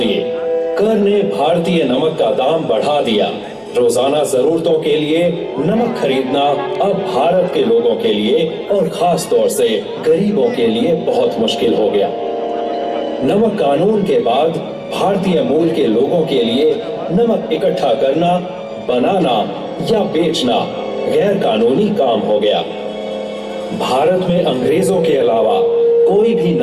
कर ने भारतीय नमक का दाम बढ़ा दिया। रोजाना जरूरतों के लिए नमक खरीदना अब भारत के लोगों के लिए और खास तौर से गरीबों के लिए बहुत मुश्किल हो गया। नमक कानून के बाद भारतीय मूल के लोगों के लिए नमक इकट्ठा करना, बनाना या बेचना गैर कानूनी काम हो गया। भारत में अंग्रेजों के अलावा कोई भी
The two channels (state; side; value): identical; both; correlation 1.00